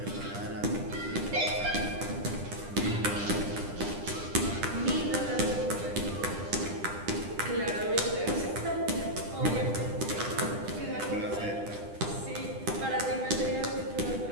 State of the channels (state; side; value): late; left; 10 ms